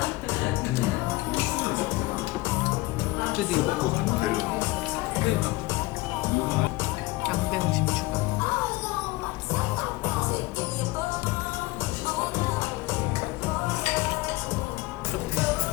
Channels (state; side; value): quieter; right; 20.8 dB